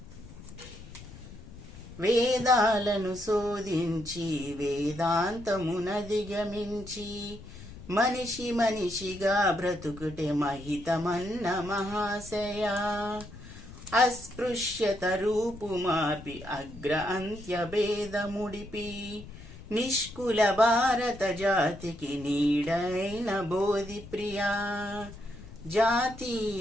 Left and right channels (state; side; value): noise; left; rumble, 16 dB below the sound